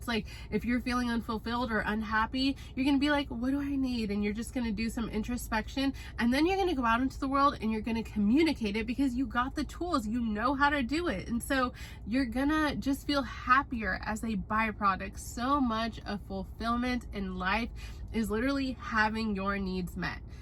like if you're feeling unfulfilled or unhappy, you're gonna be like, what do I need? And you're just gonna do some introspection, and then you're gonna go out into the world and you're gonna communicate it because you got the tools, you know how to do it. And so you're gonna just feel happier as a byproduct. So much of fulfillment in life is literally having your needs met.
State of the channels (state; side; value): identical; both; correlation 1.00